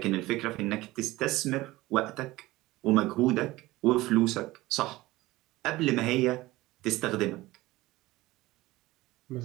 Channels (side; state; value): left; quieter; 18.7 dB